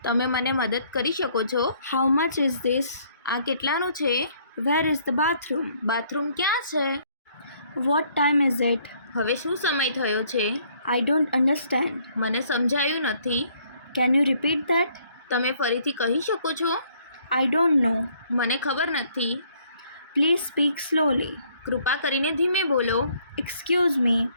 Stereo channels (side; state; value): both; inverted; correlation -0.64